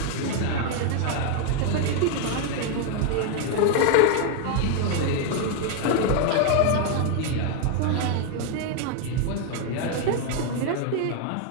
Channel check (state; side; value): different; both; correlation 0.00